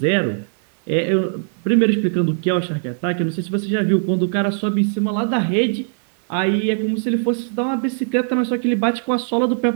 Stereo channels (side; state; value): left; silent; digital silence